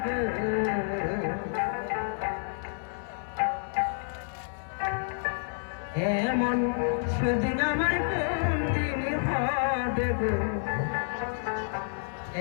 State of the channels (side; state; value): right; silent; 58 dB below the other